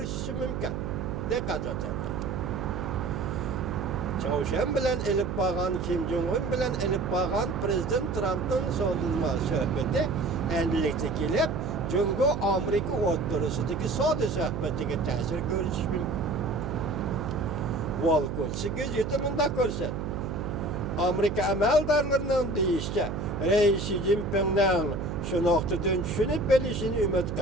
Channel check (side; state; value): right; noise; hum, 4 dB below the sound